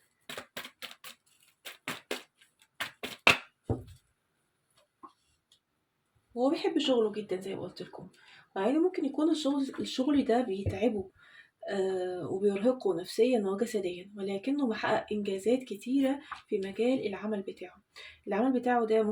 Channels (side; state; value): both; identical; correlation 1.00